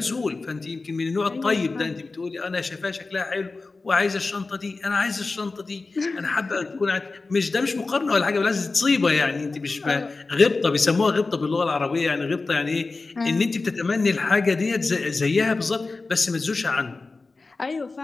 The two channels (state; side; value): quieter; right; 3.7 dB